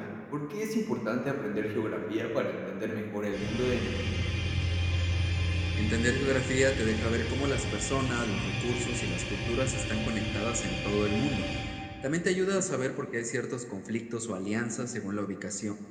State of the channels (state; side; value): identical; both; correlation 1.00